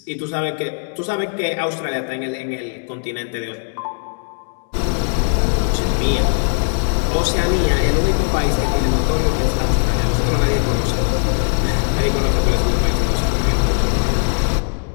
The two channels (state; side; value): silent; right; digital silence